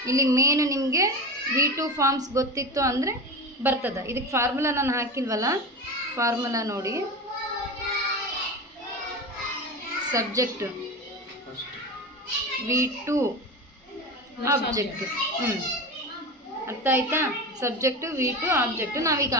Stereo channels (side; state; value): both; normal; correlation 0.25